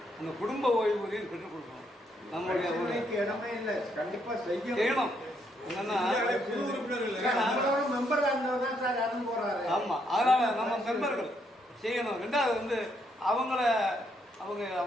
அந்த குடும்ப ஓய்வூதியம் பெற்றுக் கொடுக்கணும். நம்மளுடைய ஒரு இடமே இல்லை. கண்டிப்பாக செய்யணும். என்னன்னா மெம்பர் தான் சார் இறந்து போறாரு. ஆமாம், அதனால் நம்ம மெம்பர்கள் செய்யணும். 2வது வந்து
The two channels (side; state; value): both; normal; correlation 0.74